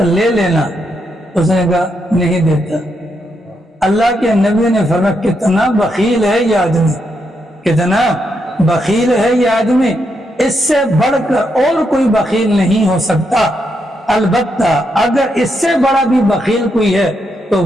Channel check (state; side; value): normal; both; correlation 0.80